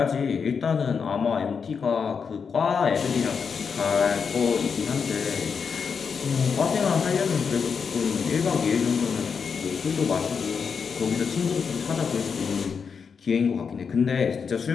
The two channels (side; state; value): right; quieter; 6.0 dB